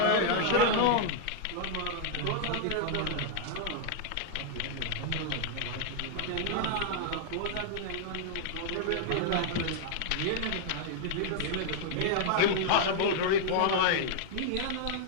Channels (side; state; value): both; different; correlation 0.00